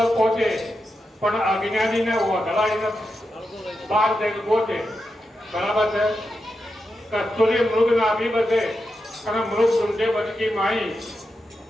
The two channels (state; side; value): normal; both; correlation 0.88